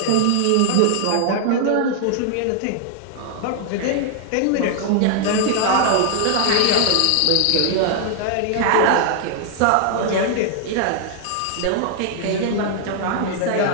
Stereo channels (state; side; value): different; both; correlation 0.00